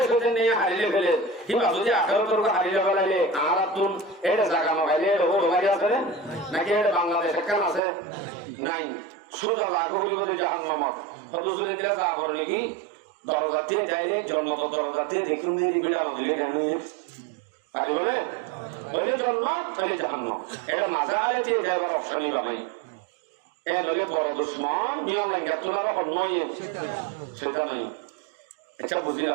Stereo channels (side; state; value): left; drops out; at 7.8 s